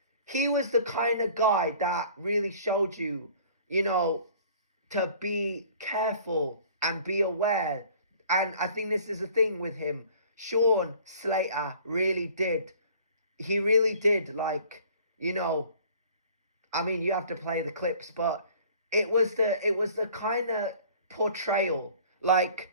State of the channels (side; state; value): both; inverted; correlation -0.50